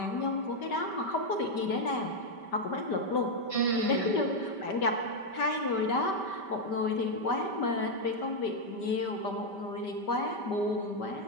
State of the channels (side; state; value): right; late; 5.2 ms